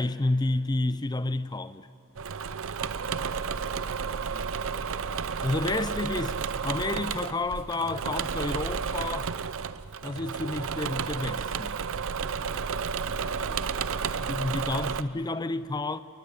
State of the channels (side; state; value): both; normal; correlation 0.37